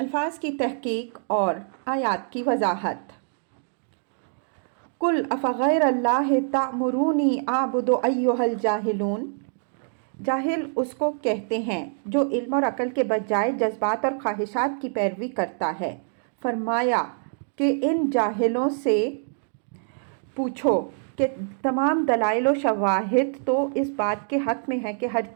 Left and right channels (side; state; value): left; silent; digital silence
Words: کی تحقیق اور آیات کی وضاحت۔ قُلْ أَفَغَيْرَ اللَّهِ تَأْمُرُونِي أَعْبُدُ أَيُّهَا الْجَاهِلُونَ۔ جاہل اس کو کہتے ہیں جو علم اور عقل کے بجائے جذبات اور خواہشات کی پیروی کرتا ہے۔ فرمایا کہ ان جاہلوں سے پوچھو کہ تمام دلائل و شواہد تو اس بات کے حق میں ہے کہ ہر